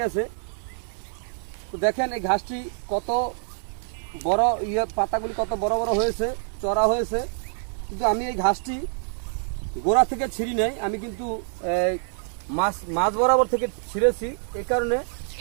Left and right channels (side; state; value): left; silent; digital silence